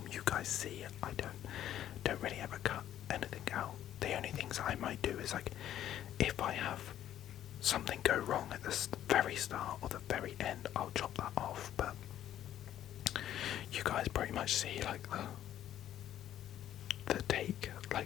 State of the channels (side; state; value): right; quieter; 11.6 dB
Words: you guys see. I don't really ever cut anything out. The only things I might do is like if I have something go wrong at the very start or the very end, I'll chop that off. But you guys pretty much see like the take